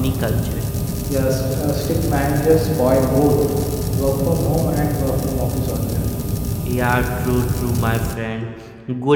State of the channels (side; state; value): both; identical; correlation 1.00